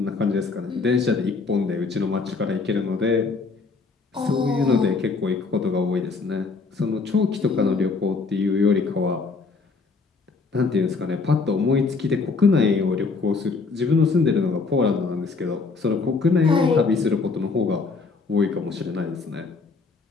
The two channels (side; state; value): right; quieter; 4.3 dB